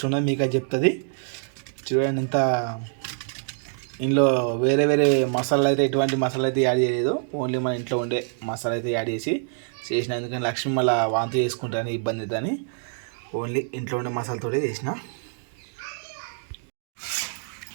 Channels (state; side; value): silent; left; digital silence